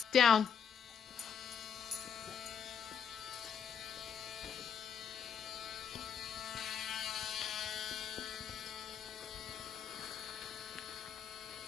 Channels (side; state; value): right; quieter; 7.5 dB